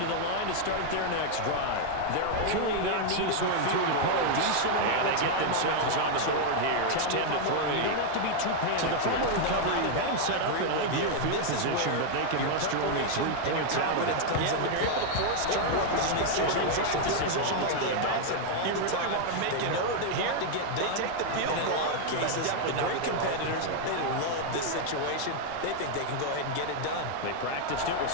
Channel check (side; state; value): both; different; correlation 0.00